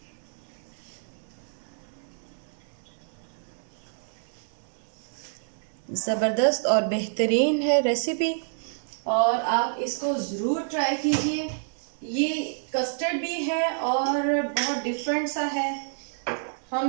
ज़बरदस्त और बेहतरीन है रेसिपी, और आप इसको ज़रूर ट्राई कीजिए। ये कस्टर्ड भी है और बहुत डिफरेंट सा है।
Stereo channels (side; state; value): left; silent; 59 dB below the other